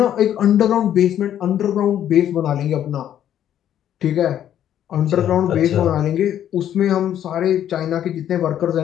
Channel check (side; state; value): right; quieter; 10.6 dB